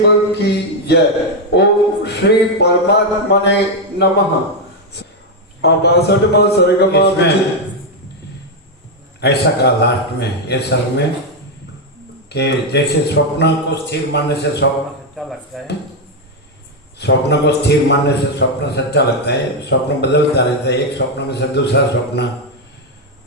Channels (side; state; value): both; normal; correlation 0.03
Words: की जय। ओम श्री परमात्मा ने नमः। 62वां सर्ग ऐसा कहा लास्ट में ये सर्ग में कि जैसे स्वप्न को स्थिर मानने से स्वप्न सच्चा लगता है, स्वप्न को स्थिर मानने से स्वप्न सच्चा लगता है, स्वप्न बदलता रहता है, एक स्वप्न में से दूसरा स्वप्न,